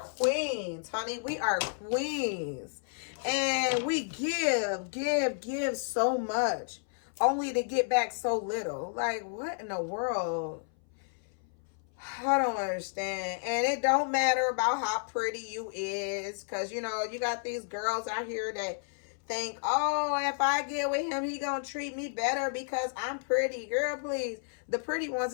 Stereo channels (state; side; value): silent; right; 57 dB below the other